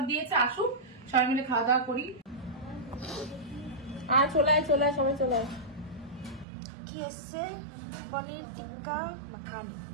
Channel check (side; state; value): left; drops out; at 6.5 s